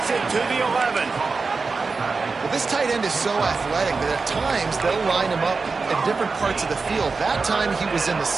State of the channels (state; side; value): quieter; left; 4.4 dB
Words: it to the 11. Well, this tight end is so athletic that at times they'll line him up in different parts of the field. That time he was in the